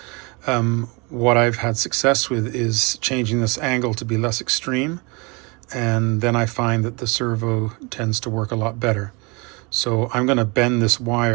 What I've had success with is changing this angle to be less extreme, and then I find that the servo tends to work a lot better. So I'm going to bend this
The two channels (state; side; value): quieter; left; 28.9 dB